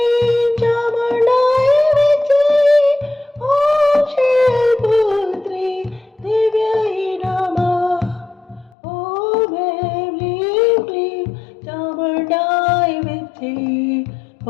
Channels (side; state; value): right; drops out; at 8.8 s